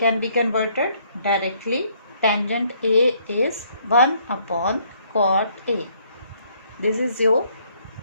be converted directly. Tangent A is 1 upon cot A. This is your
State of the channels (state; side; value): inverted; both; correlation -0.66